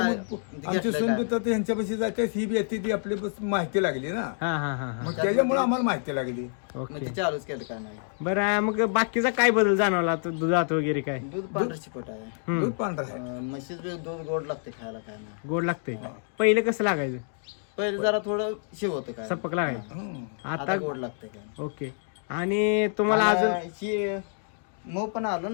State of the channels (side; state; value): right; silent; digital silence